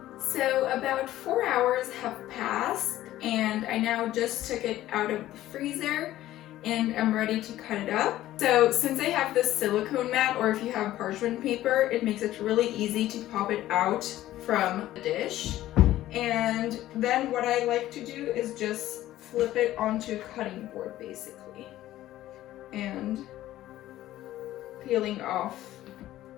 So about 4 hours have passed and I now just took it out of the freezer and I'm ready to cut it up. So since I have this silicone mat, or if you have parchment paper, it makes it really easy to pop it out from the dish. And then what I like to do is just flip it onto a cutting board basically, and peeling off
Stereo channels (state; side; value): quieter; right; 14.4 dB